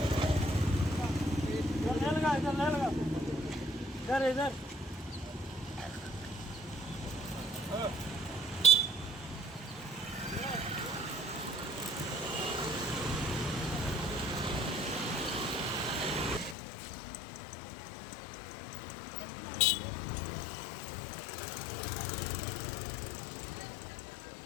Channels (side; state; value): right; drops out; at 16.6 s